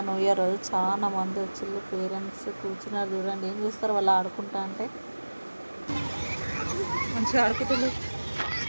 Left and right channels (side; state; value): both; inverted; correlation -1.00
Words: న్యూ ఇయర్ రోజు, చాలా మంది వచ్చిళ్ళు పేరెంట్స్ కూర్చున్నారు. చూడండి ఏం చేస్తారు వాళ్ళు ఆడుకుంటా అంటే. మంచిగా ఆడుకుంటున్నారు,